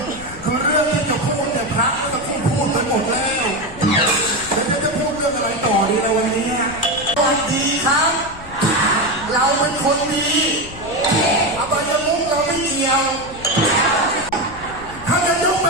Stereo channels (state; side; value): noise; left; rumble, 16 dB below the sound